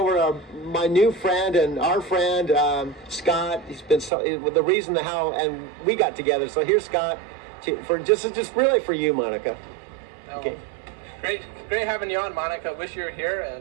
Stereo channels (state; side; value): drops out; left; at 4.1 s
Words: to my new friend and our friend, Scott. He's been the reason how and we got together. So here's Scott for just really for you, Monica. Oh, Okay. Great having you on, Monica. Wish you were